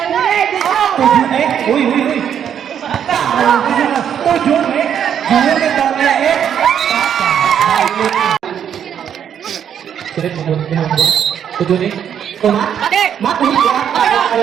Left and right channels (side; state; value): left; quieter; 8.8 dB